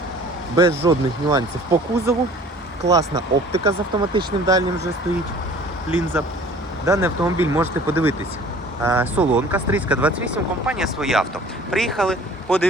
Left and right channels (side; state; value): both; normal; correlation 0.49